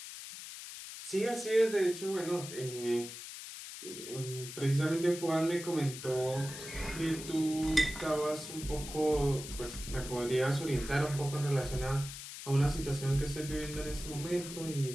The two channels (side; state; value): left; noise; hiss, 10 dB below the sound